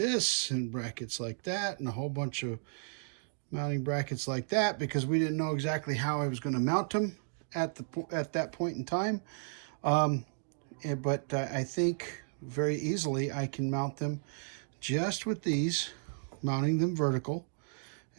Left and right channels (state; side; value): silent; left; digital silence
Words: and brackets like that and a whole bunch of mounting brackets like that, because we didn't know exactly how I was going to mount them at that point in time. But I think very easily I can mount them just with these, mounting them vertical.